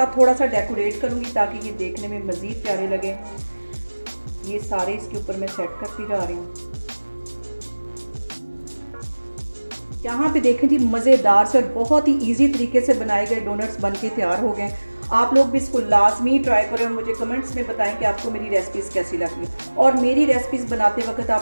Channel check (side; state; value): both; inverted; correlation -1.00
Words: थोड़ा सा डेकोरेट करूँगी ताकि ये देखने में मज़ीद प्यारे लगे। ये सारे इसके ऊपर मैं सेट करती जा रही हूँ। यहाँ पे देखें जी, मज़ेदार से और बहुत ही इजी तरीके से बनाए गए डोनट्स बन के तैयार हो गए। आप लोग भी इसको लाजमी ट्राई करें और मुझे कमेंट्स में बताएं कि आपको मेरी रेसिपीज़ कैसी लगी। और मेरी रेसिपीज़ बनाते वक्त